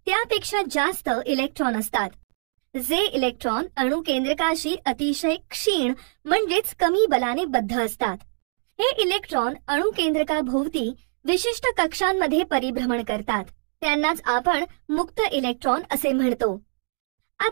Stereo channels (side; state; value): left; silent; digital silence